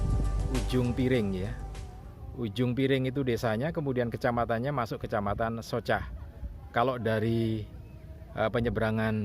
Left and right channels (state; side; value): identical; both; correlation 1.00